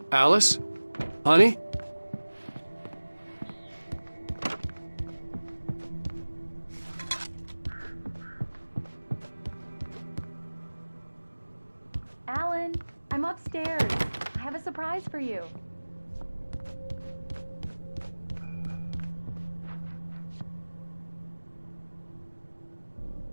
Alice? Honey? Alan, I'm upstairs. I have a surprise for you.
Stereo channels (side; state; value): both; inverted; correlation -1.00